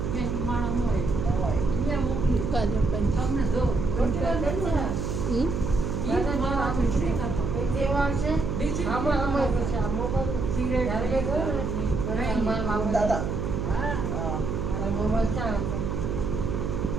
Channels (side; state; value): right; noise; hum, 2 dB below the sound